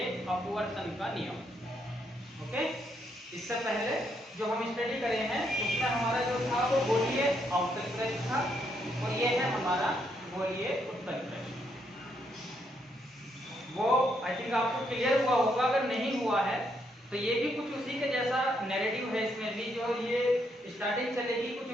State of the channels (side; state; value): both; normal; correlation 0.76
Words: अपवर्तन का नियम। ओके, इससे पहले जो हम स्टडी करे हैं उसमें हमारा जो था वो गोलीय अवतल पृष्ठ था और ये है हमारा गोलीय उत्तल पृष्ठ। वो आई थिंक आपको क्लियर हुआ होगा, अगर नहीं हुआ है तो ये भी कुछ उसी के जैसा नैरेटिव है। इसमें भी जो ये स्टार्टिंग चलेगी कुछ